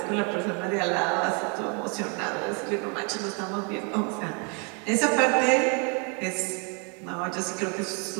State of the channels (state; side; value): quieter; left; 35.8 dB